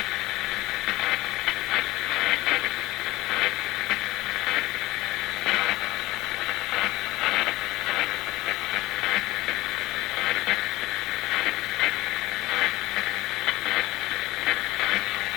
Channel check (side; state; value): right; quieter; 18.5 dB